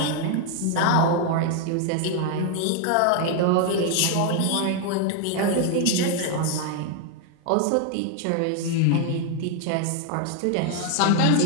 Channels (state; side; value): different; both; correlation 0.01